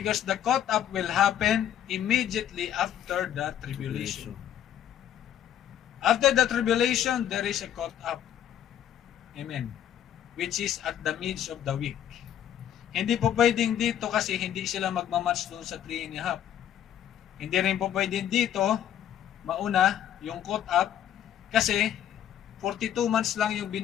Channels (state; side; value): quieter; right; 10.5 dB